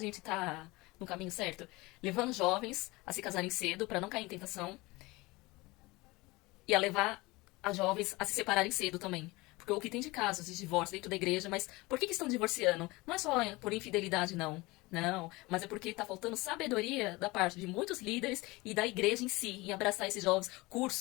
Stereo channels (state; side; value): quieter; right; 22.4 dB